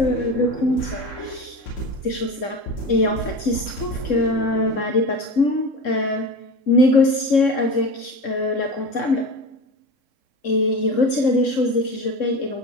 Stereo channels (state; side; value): late; right; 3.7 ms